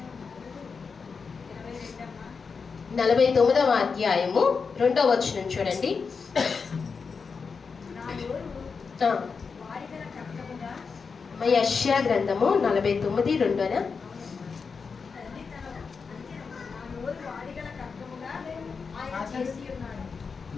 49వ అధ్యాయము 2వ వచనం చూడండి. యెషయా గ్రంథము 49:2.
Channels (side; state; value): right; quieter; 5.3 dB